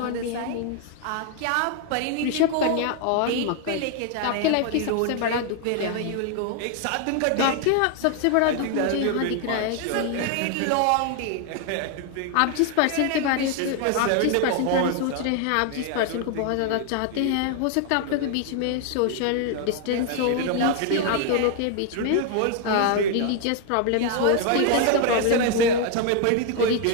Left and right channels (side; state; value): both; different; correlation 0.00